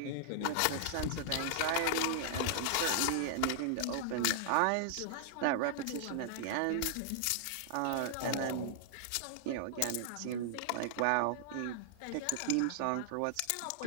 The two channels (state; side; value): different; both; correlation -0.01